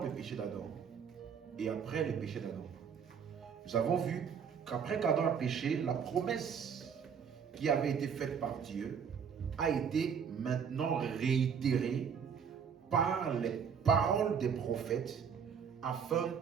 le péché d'Adam et après le péché d'Adam. Nous avons vu qu'après qu'Adam a péché, la promesse qui avait été faite par Dieu a été maintenant réitérée par les paroles des prophètes afin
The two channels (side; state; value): left; quieter; 7.1 dB